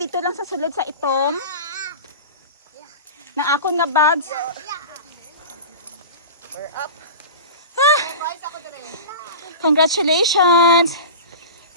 lang sa sulod sa itom. Ng akong nga bags. We're up. Ah, Rise ako din. Congratulations!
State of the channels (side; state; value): both; inverted; correlation -0.33